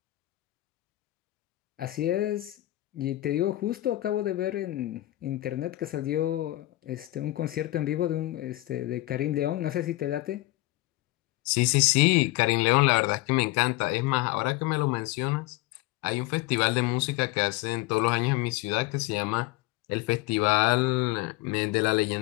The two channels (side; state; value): right; quieter; 18.2 dB